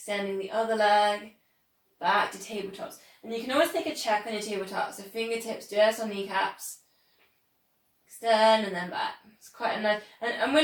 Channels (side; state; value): both; identical; correlation 1.00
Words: the other leg, back to tabletops. And you can always take a check on your tabletops, so fingertips just on kneecaps, extend and then back. It's quite a nice, and